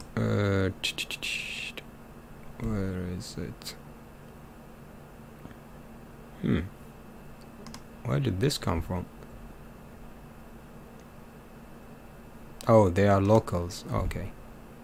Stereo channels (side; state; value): both; identical; correlation 1.00